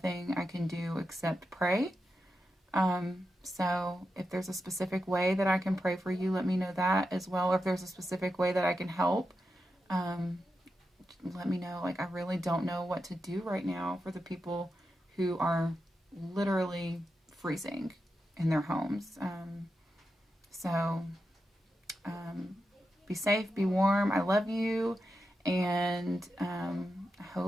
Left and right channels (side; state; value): both; normal; correlation 0.88